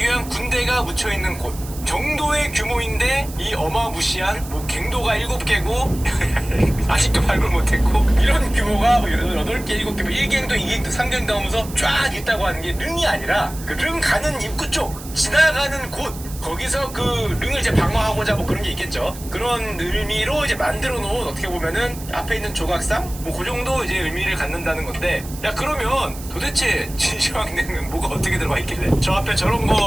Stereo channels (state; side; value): noise; right; hiss, 15 dB below the sound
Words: 위한 군대가 묻혀 있는 곳 정도의 규모인데 이 어마무시한 뭐 갱도가 7개고 아직도 발굴 못했고 이런 규모가 8개, 7개, 1갱도, 2갱도, 3갱도 하면서 쫙 있다고 하는 게 릉이 아니라 그 릉 가는 입구 쪽 지나가는 곳 거기서 그 릉을 이제 방어하고자 뭐 그런 게 있겠죠. 그런 의미로 이제 만들어 놓은 어떻게 보면은 앞에 있는 조각상 뭐 그 정도 이제 의미를 갖는다는 건데 야 그러면 도대체 진시황릉은 뭐가 어떻게 들어가 있길래 저 앞에 저런